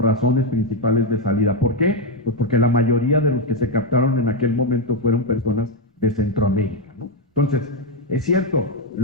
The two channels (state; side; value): normal; both; correlation 0.03